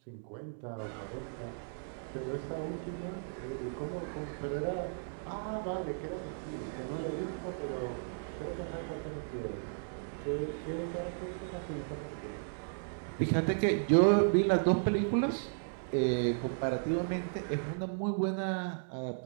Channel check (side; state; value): left; silent; digital silence